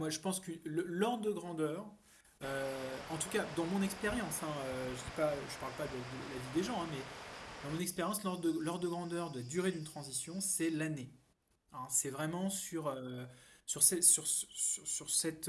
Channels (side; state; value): both; identical; correlation 1.00